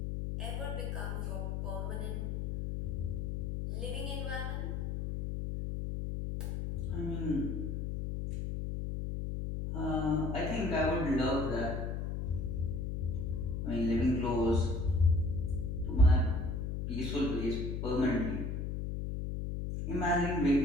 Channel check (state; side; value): noise; left; hum, 2 dB below the sound